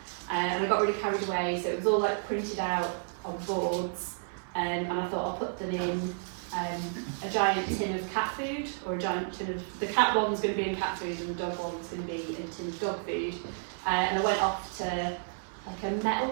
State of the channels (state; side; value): silent; left; 57 dB below the other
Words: And I got really carried away, so it was all like printed out on boards, and I thought I'll put them in a giant tin of cat food, or a giant tin of, the cat one was going to be in cat food and the dog one was going to be in a tin of dog food. And I went off to like a